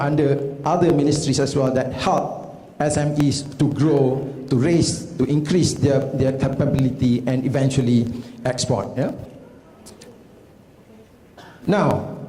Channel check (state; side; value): identical; both; correlation 1.00